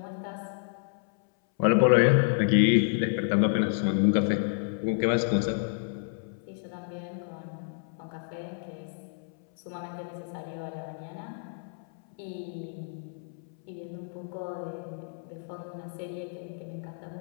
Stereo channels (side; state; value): right; silent; 58 dB below the other